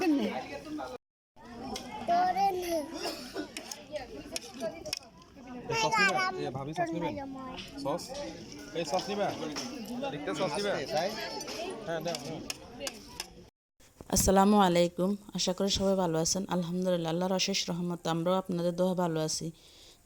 nih. Sauce নিবে ভাবি sauce নিবে সস এই সস নিবে দেখতে সস নিবে হ্যাঁ দাও আসসালামু আলাইকুম। আশা করি সবাই ভালো আছেন। আলহামদুলিল্লাহ, আল্লাহর অশেষ রহমত আমরাও আপনাদের দোয়া ভালো আছি।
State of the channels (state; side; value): identical; both; correlation 1.00